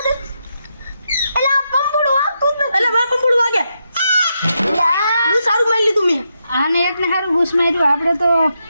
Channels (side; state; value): both; inverted; correlation -0.83